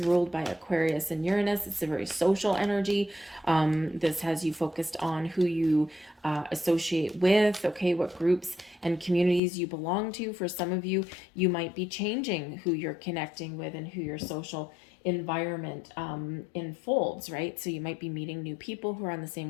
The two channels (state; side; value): drops out; right; at 9.4 s